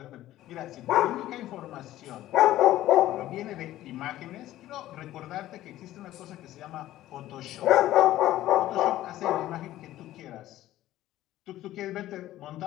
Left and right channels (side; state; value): right; quieter; 14.4 dB